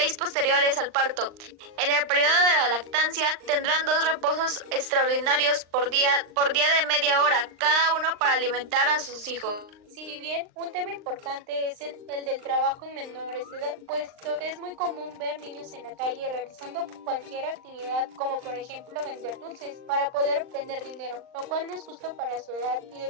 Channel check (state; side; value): late; left; 39 ms